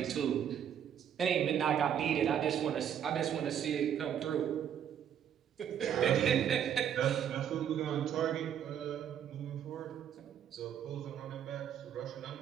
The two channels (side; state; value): left; quieter; 9.2 dB